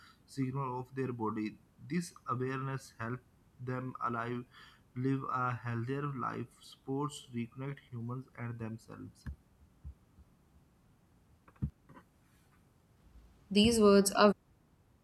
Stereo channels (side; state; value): both; identical; correlation 1.00